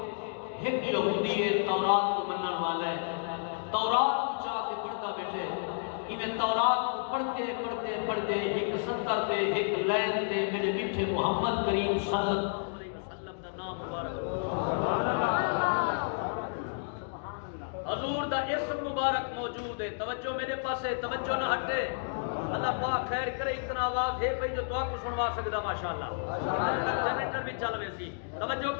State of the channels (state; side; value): silent; right; digital silence